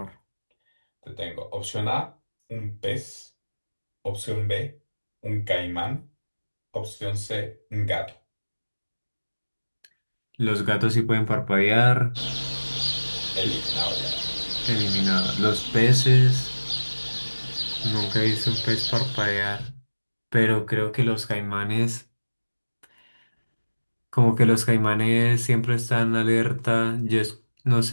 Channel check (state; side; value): inverted; both; correlation -1.00